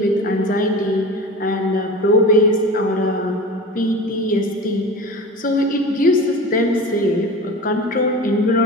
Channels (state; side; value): normal; both; correlation 0.33